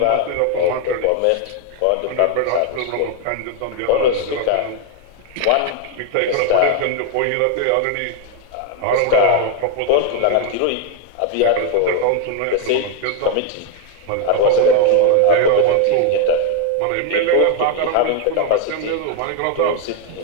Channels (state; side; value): different; both; correlation 0.01